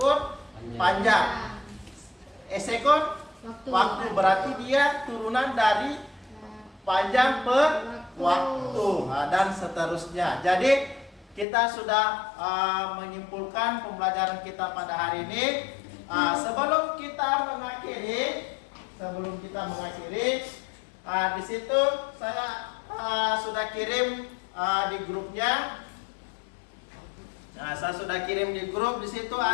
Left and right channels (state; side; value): drops out; right; at 11.5 s